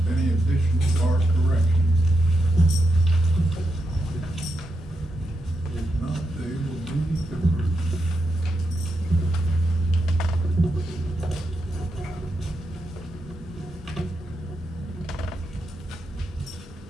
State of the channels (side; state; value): both; normal; correlation 0.85